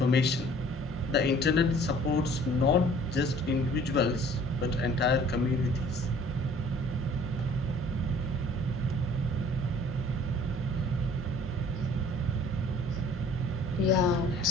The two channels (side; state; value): both; normal; correlation 0.53